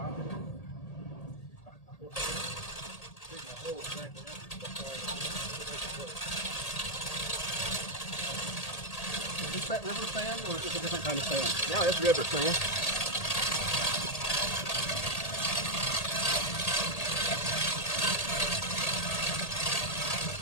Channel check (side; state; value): right; late; 1.8 ms